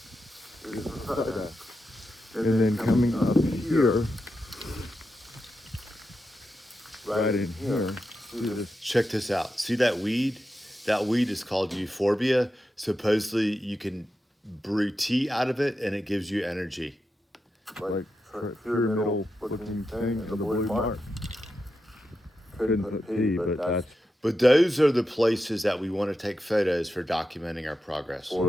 is for photo. And then coming up here, right in here, see this. Check this out. See that weed? That weed is called euphorbia. Supposedly you can brew tea out of it and it gives you energy. Like pyramidal looking thing in the blue mark. Couldn't put P, but that's But those are the places that we want to take photos for documenting our progress.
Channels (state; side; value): normal; both; correlation 0.88